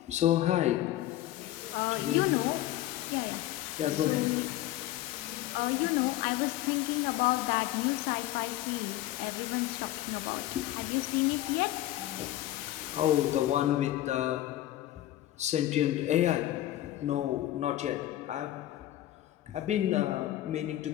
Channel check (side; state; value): right; quieter; 14.4 dB